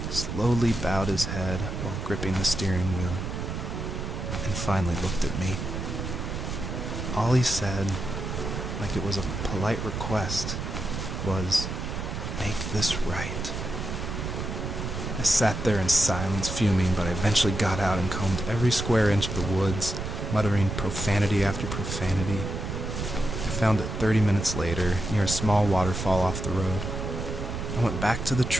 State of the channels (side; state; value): right; noise; rumble, 5 dB below the sound